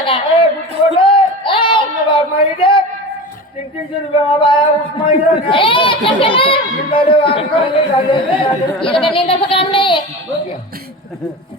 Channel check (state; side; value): normal; both; correlation 0.30